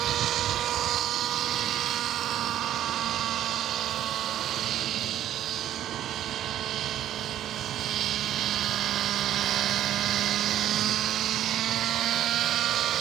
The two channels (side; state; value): left; quieter; 11.7 dB